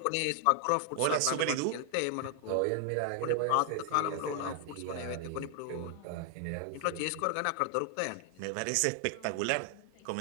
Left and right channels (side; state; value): both; different; correlation 0.00